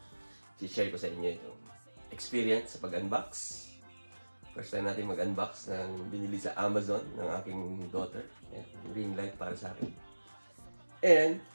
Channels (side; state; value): both; inverted; correlation -1.00